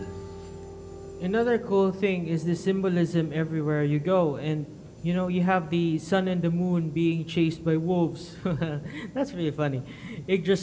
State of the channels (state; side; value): identical; both; correlation 1.00